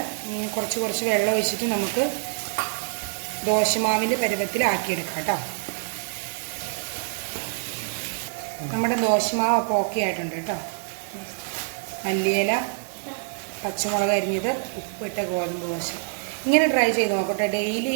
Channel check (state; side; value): silent; left; digital silence